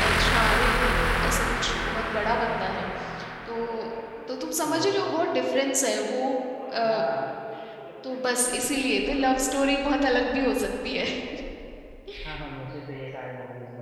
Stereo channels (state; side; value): identical; both; correlation 1.00